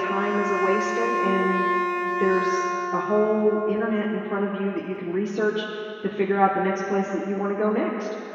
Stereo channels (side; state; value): both; identical; correlation 1.00